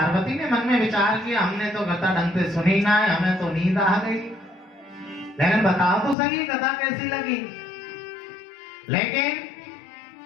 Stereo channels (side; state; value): right; drops out; at 6.2 s